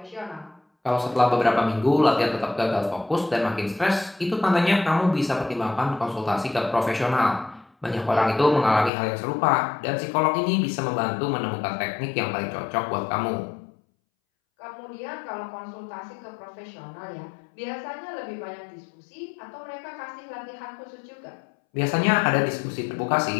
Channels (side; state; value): right; drops out; at 8.9 s